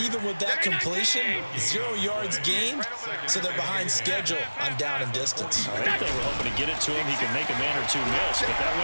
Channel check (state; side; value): inverted; both; correlation -1.00